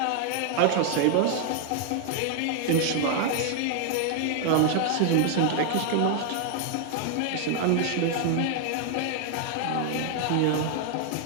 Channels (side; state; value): both; different; correlation 0.00